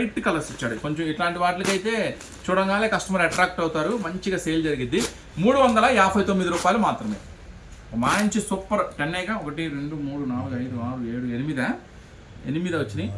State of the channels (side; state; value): both; identical; correlation 1.00